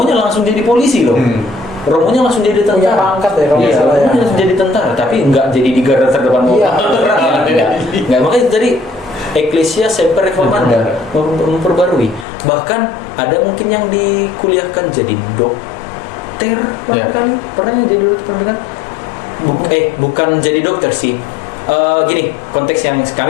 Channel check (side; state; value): right; drops out; at 12.2 s